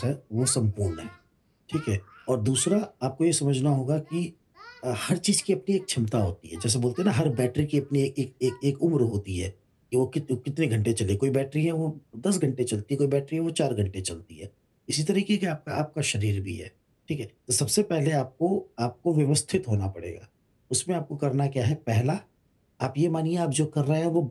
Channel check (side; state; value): both; identical; correlation 1.00